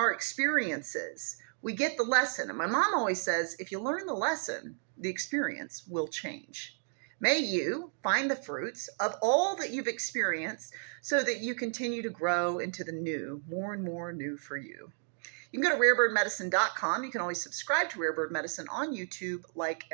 experiences, we get the lesson. And my mom always says, if you learn the lesson, the experience will change. May you find the fruits of all that you've experienced so that you continue to grow into the new, more and more new for you. You can go to rarebirdmedicine.com. You can always subscribe to Rare Bird Medicine on YouTube, like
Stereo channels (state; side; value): silent; left; 56 dB below the other